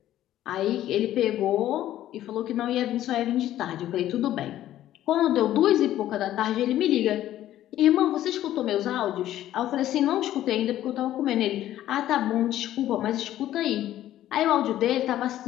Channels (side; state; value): right; quieter; 13.0 dB